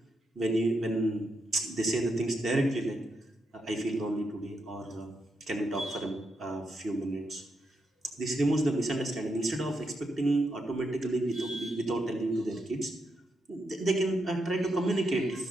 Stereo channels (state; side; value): normal; both; correlation 0.83